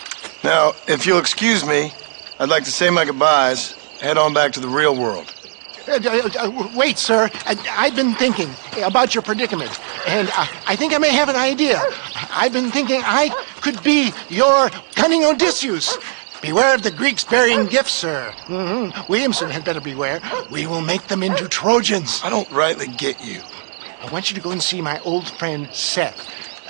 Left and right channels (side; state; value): left; silent; digital silence